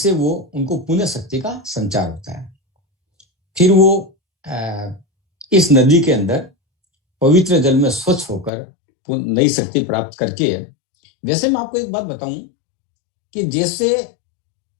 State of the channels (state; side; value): drops out; right; at 8.5 s